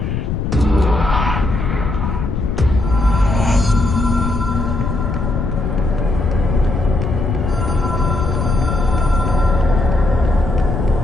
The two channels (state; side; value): noise; left; rumble, 2 dB below the sound